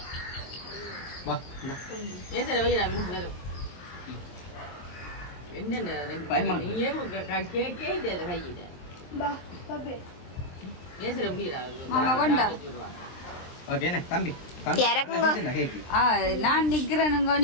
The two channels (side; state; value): right; late; 23 ms